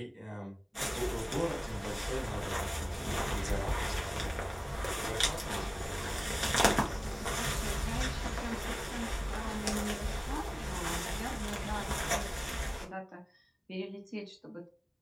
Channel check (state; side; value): identical; both; correlation 1.00